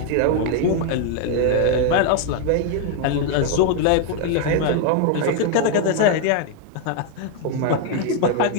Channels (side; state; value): both; different; correlation 0.01